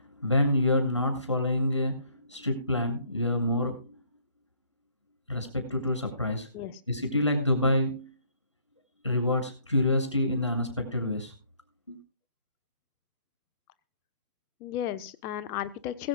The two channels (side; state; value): both; inverted; correlation -0.62